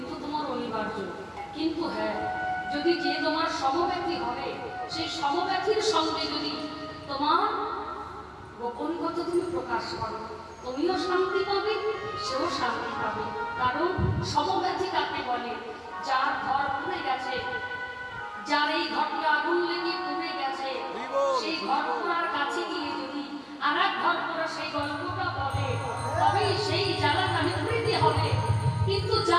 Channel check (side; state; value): both; identical; correlation 1.00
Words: তোমার অনিবার্য। কিন্তু হ্যাঁ, যদি যে তোমার সমব্যথী হবে, সেই সমব্যথীর সঙ্গে যদি তোমার গোপন কথা তুমি প্রকাশ করো, তুমিও শান্তি পাবে, সেও শান্তি পাবে। কারণ সমব্যথী কাকে বলে? যার ঘর পুড়ে গেছে, যার এই ঘরটা আগুন লেগে পুড়ে গেছে, সেই ঘর পোড়ার কাছে গিয়ে যদি আর এক ঘর পোড়া সেই গল্পটা বলে, তবেই সেই জ্বালাটা নিবৃত্তি হবে। কিন্তু